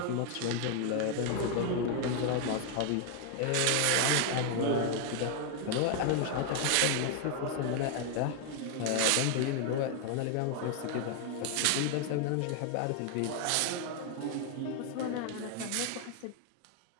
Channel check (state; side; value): different; both; correlation 0.00